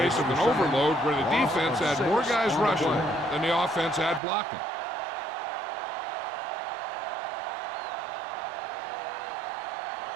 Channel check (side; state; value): left; drops out; at 4.2 s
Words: of an overload where the defense had more guys rushing than the offense had blocking.